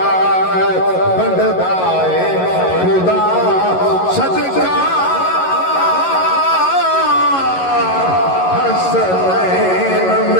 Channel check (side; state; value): right; late; 11 ms